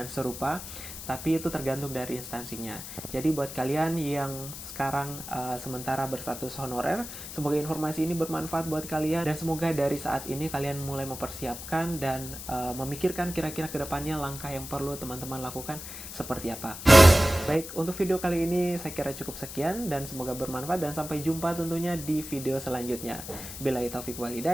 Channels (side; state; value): left; noise; hiss, 10 dB below the sound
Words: serupa, tapi itu tergantung dari instansinya. Jadi buat kalian yang sekarang sementara berstatus honorer, semoga informasi ini bermanfaat buat kalian dan semoga dari saat ini kalian mulai mempersiapkan dan memikirkan kira-kira kedepannya langkah yang perlu teman-teman lakukan seperti apa. Baik, untuk video kali ini saya kira cukup sekian dan semoga bermanfaat dan sampai jumpa tentunya di video selanjutnya. Billahi taufiq wal